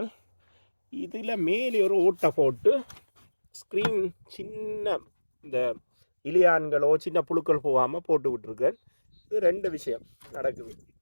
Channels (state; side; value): inverted; both; correlation -1.00